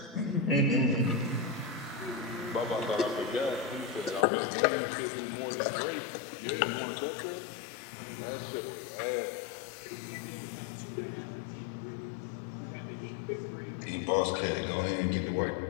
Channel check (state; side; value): drops out; right; at 4.2 s